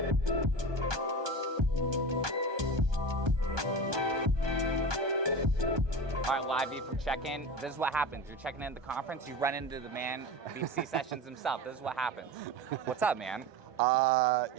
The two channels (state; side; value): late; left; 1.2 ms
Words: right, live view from check-in. This is what happens. You're checking in at the conference, you run into the man, BC Sessions himself. This is what happens. What's up, man?